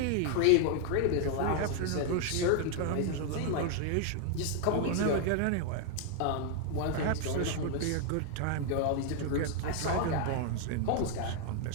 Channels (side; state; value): both; different; correlation 0.00